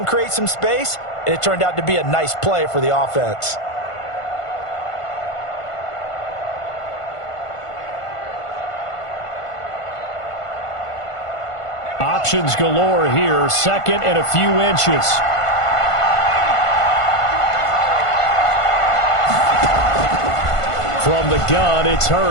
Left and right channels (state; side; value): late; right; 1.5 ms